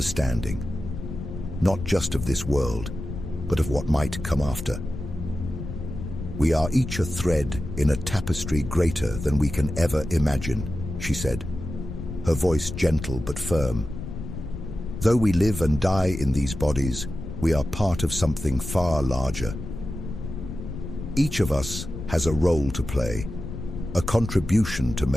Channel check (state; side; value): noise; left; rumble, 8 dB below the sound